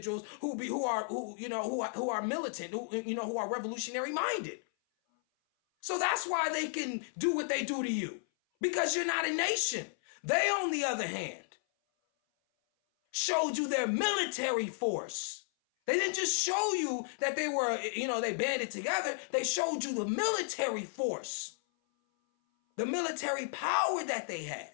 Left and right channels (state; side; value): silent; right; 55 dB below the other